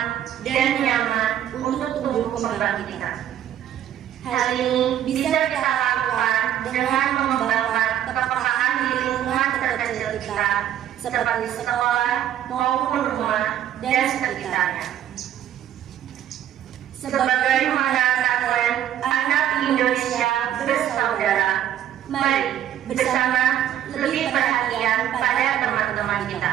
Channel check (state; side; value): quieter; left; 10.9 dB